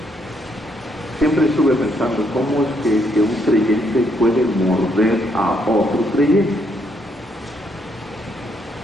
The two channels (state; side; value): normal; both; correlation 0.73